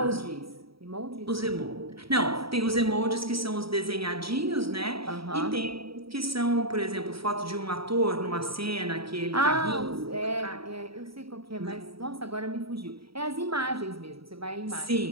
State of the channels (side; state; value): left; late; 0.75 ms